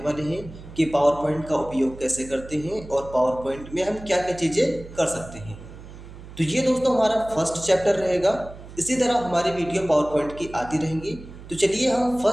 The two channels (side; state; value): right; noise; hum, 16 dB below the sound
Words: हैं कि पावर पॉइंट का उपयोग कैसे करते हैं और पावर पॉइंट में हम क्या क्या चीज़ें कर सकते हैं। तो ये दोस्तों हमारा फर्स्ट चैप्टर रहेगा। इसी तरह हमारी वीडियो पावर पॉइंट की आती रहेंगी। तो चलिए हम